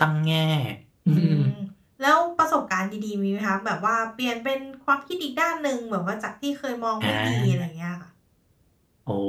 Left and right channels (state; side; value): identical; both; correlation 1.00